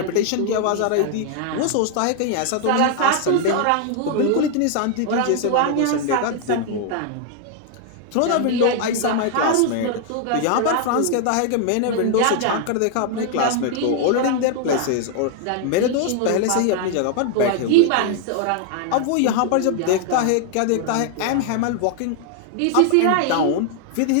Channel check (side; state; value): both; different; correlation 0.00